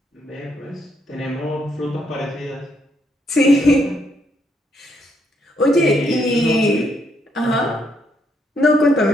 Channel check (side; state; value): both; normal; correlation 0.74